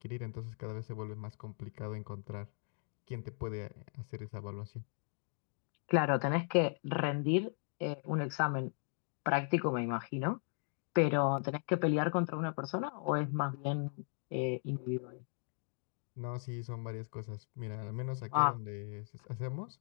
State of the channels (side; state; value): right; silent; 53 dB below the other